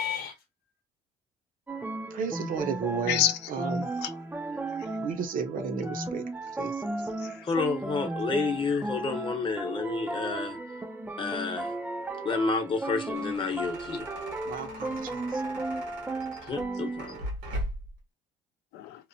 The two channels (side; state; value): both; normal; correlation 0.55